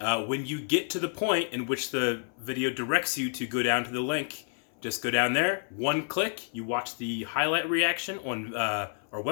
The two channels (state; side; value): silent; right; 58 dB below the other